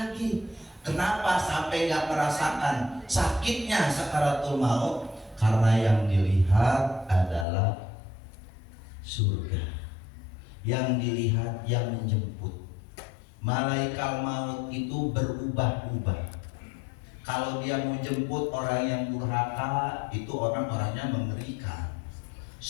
Kenapa sampai nggak merasakan sakitnya sakaratul maut? Karena yang dilihat adalah surga, yang dilihat yang menjemput. Malaikat maut itu berubah-ubah. Kalau dia mau jemput orang yang durhaka, itu orang-orangnya mengerikan,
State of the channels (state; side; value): drops out; right; at 7.5 s